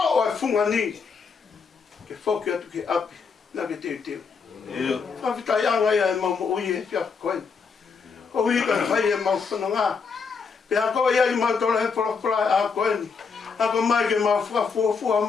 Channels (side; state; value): right; quieter; 5.4 dB